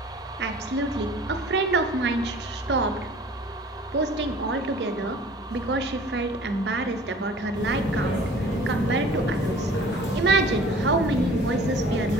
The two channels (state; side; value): normal; both; correlation 0.47